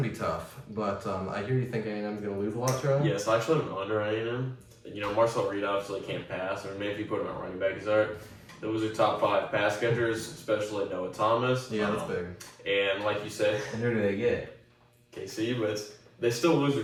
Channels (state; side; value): identical; both; correlation 1.00